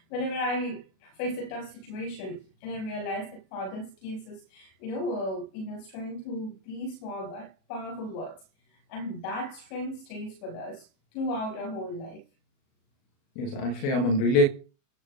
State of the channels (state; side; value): late; right; 37 ms